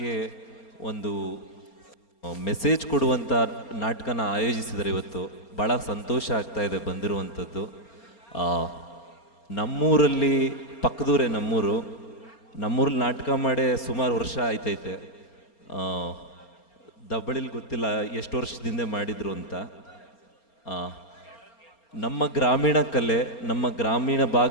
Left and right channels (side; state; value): right; late; 4.3 ms